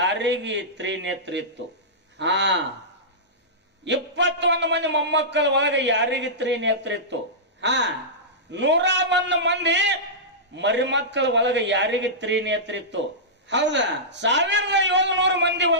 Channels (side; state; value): both; normal; correlation -0.15